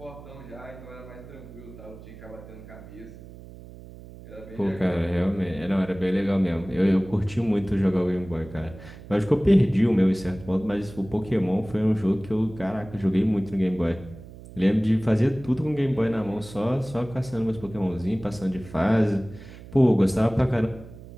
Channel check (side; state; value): right; noise; hum, 17 dB below the sound